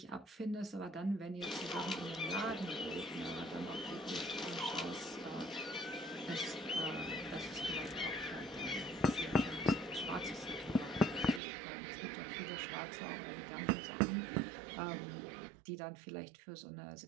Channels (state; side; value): drops out; left; at 11.4 s